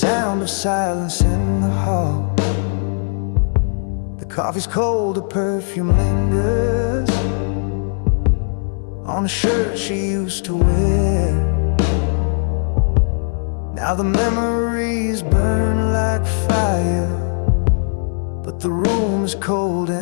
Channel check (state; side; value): silent; right; digital silence